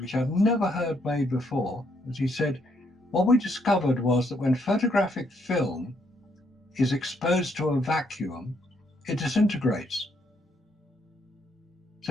I've never heard made before, was he said, what we discovered was that when photographic film is exposed to a vacuum, it disintegrates.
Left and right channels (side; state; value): both; normal; correlation 0.73